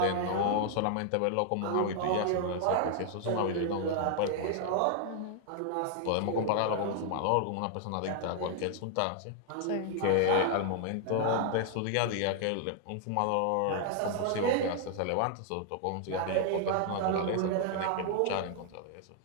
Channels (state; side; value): different; both; correlation 0.00